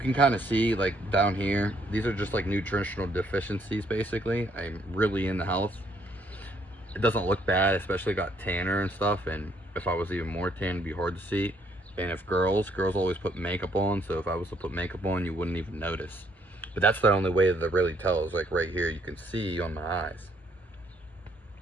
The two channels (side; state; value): both; normal; correlation 0.68